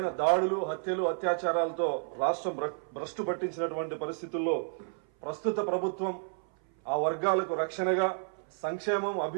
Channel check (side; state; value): left; silent; 57 dB below the other